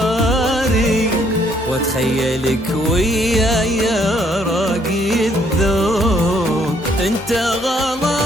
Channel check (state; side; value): normal; both; correlation 0.67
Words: واتخيلك وياي يا راقي الذوق. انت